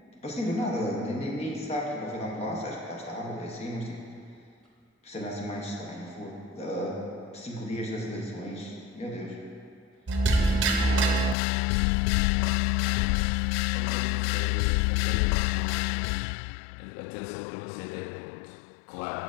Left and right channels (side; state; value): right; drops out; at 11.4 s